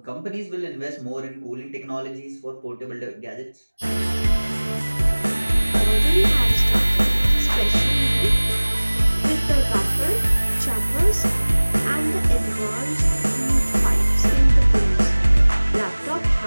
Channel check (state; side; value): inverted; both; correlation -1.00